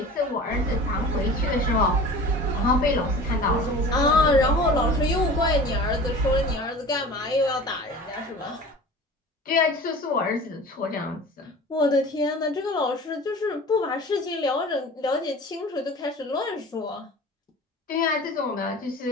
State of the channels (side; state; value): both; normal; correlation 0.39